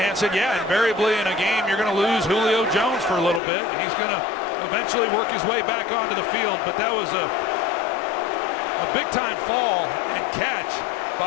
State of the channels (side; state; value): right; drops out; at 3.4 s